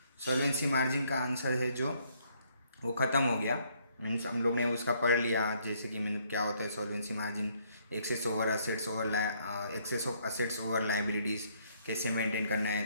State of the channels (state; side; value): inverted; both; correlation -0.68